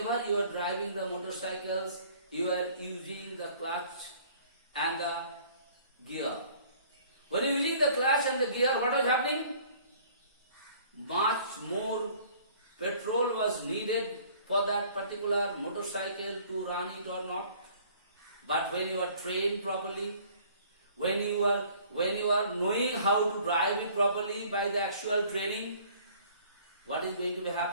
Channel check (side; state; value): both; inverted; correlation -0.54